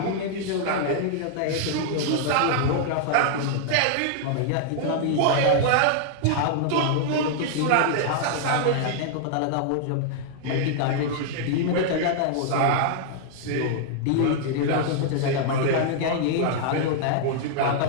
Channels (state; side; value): different; both; correlation -0.01